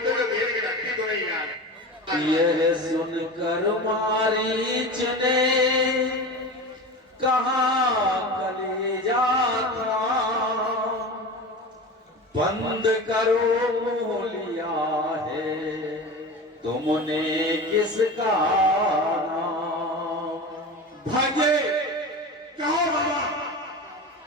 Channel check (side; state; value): both; normal; correlation 0.29